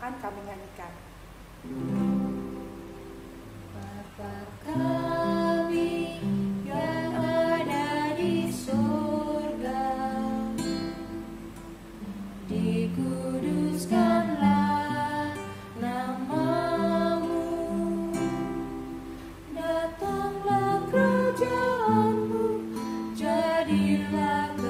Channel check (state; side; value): identical; both; correlation 1.00